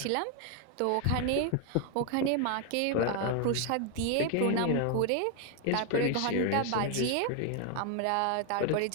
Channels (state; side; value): different; both; correlation 0.01